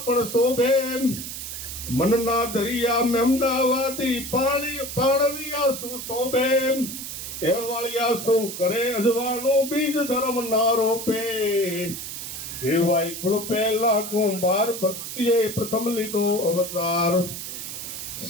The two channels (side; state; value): right; noise; hiss, 8 dB below the sound